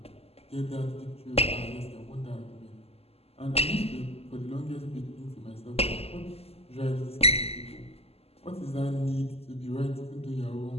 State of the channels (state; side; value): late; right; 0.29 ms